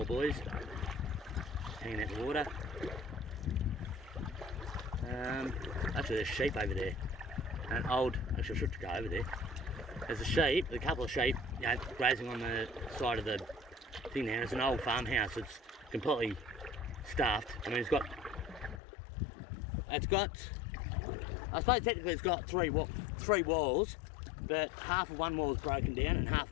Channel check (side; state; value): right; drops out; at 18.8 s